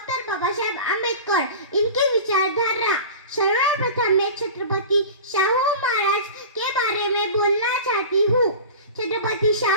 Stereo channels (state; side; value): inverted; both; correlation -0.34